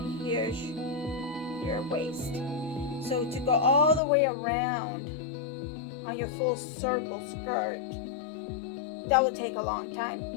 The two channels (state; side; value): drops out; right; at 4.0 s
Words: here's your waist. So to go all the way around on your full circle skirt, that would take a long